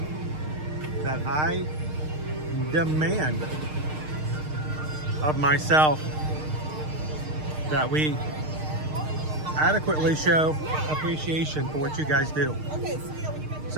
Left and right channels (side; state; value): left; late; 6.5 ms